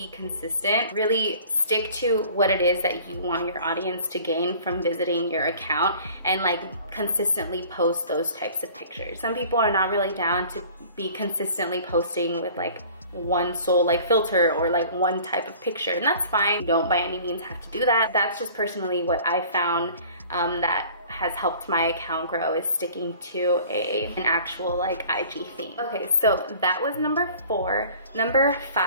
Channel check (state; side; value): inverted; both; correlation -0.48